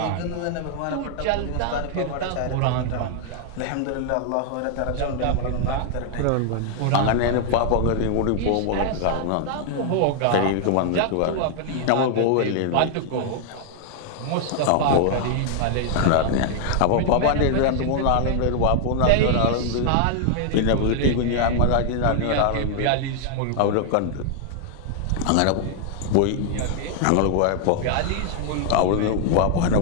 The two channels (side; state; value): both; different; correlation 0.00